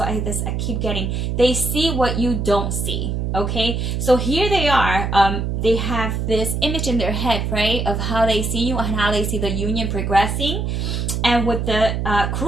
I keep getting. They see what you don't see, okay? So here they are. They have this image in their head, right, of how they see you and how they see the union progressing. And with the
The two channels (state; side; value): noise; right; hum, 1 dB below the sound